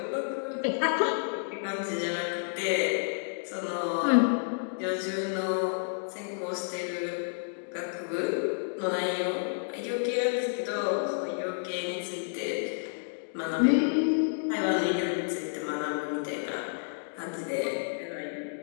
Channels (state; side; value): silent; right; digital silence